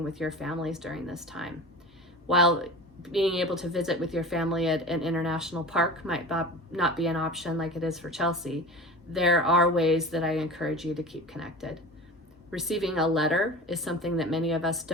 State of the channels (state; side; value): normal; both; correlation 0.34